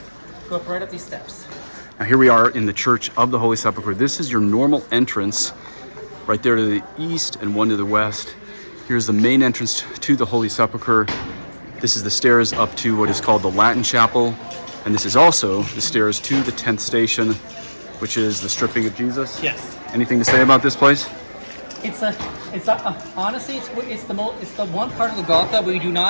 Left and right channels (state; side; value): inverted; both; correlation -1.00